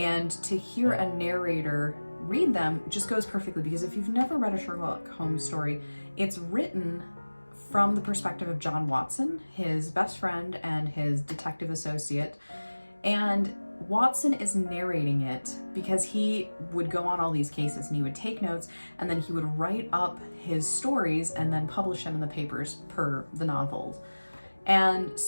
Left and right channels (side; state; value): both; inverted; correlation -1.00